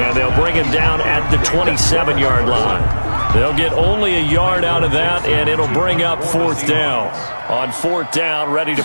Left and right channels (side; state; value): both; inverted; correlation -1.00